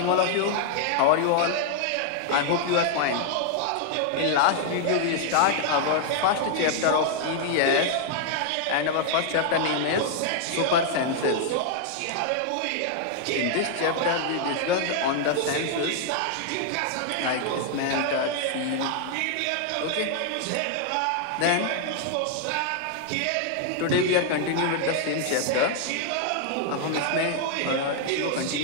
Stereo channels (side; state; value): both; different; correlation 0.00